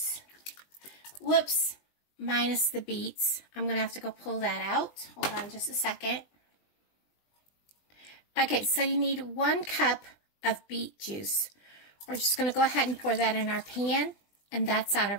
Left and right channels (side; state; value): right; late; 20 ms